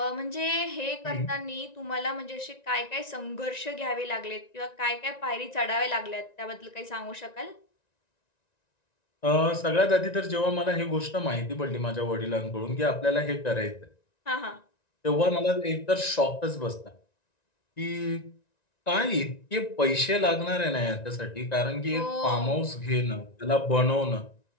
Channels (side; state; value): right; late; 1.9 ms